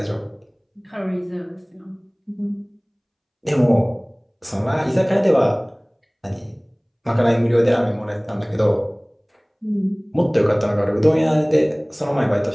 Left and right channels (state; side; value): identical; both; correlation 1.00